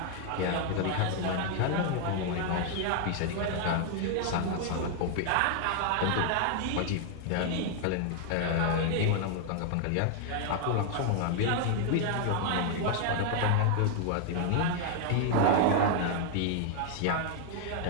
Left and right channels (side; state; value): both; different; correlation 0.00